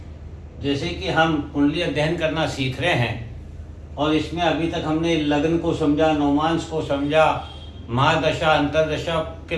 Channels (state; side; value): identical; both; correlation 1.00